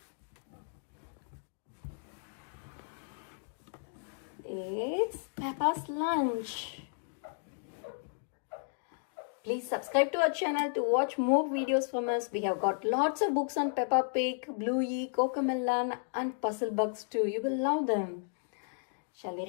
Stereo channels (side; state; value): right; silent; digital silence